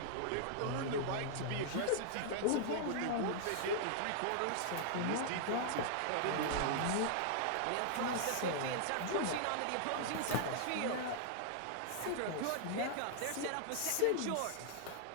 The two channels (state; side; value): different; both; correlation -0.01